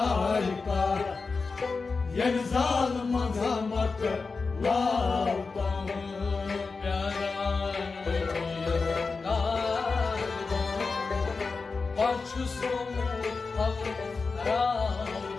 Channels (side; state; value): right; quieter; 4.4 dB